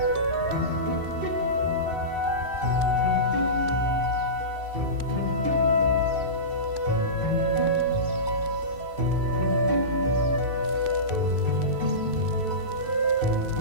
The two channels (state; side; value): late; left; 2.7 ms